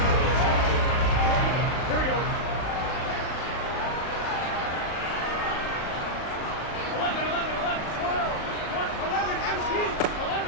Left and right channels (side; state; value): right; late; 38 ms